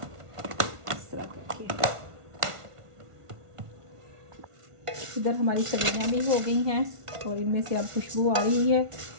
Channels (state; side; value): late; left; 1.4 ms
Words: इस तरह करके। इधर हमारी सब्जियाँ भी हो गई हैं और इनमें से अब खुशबू आ रही है।